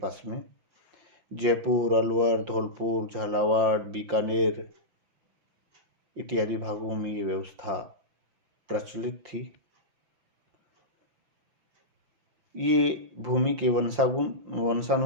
में। जयपुर, अलवर, धौलपुर, झालावाड़, बीकानेर इत्यादि भागों में ये व्यवस्था प्रचलित थी। ये भूमि के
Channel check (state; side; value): late; left; 5.7 ms